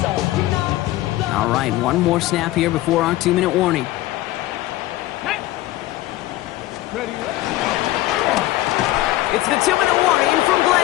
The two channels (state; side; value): quieter; right; 16.7 dB